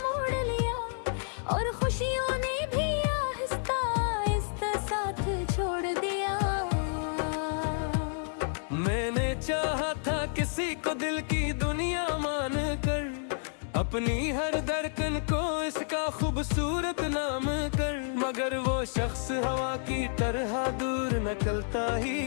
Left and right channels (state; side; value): silent; right; digital silence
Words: मोड़ लिया, और खुशियों ने भी आहिस्ता आहिस्ता साथ छोड़ दिया। मैंने चाहा था किसी को दिल की दुनिया मान कर, अपनी हर धड़कन को इसका खूबसूरत नाम कर, मगर वो शख्स हवा की तरह दूर निकलता ही